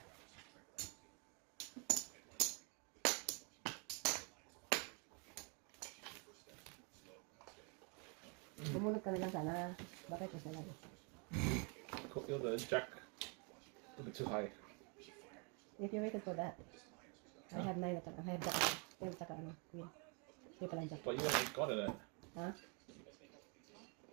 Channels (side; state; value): left; quieter; 35.0 dB